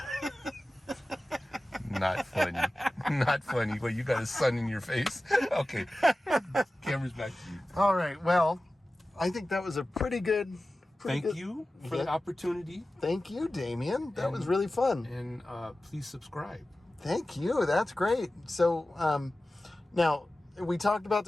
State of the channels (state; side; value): normal; both; correlation 0.96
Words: Not funny. Not funny. Well, you got a sun in your face. Okay. Camera's back to you. All right. Well, I think that was a pretty good. Thank you for the opportunity. Thank you, Damion. That was really fun. And please subscribe. Thank you. That's great. So, now we talked about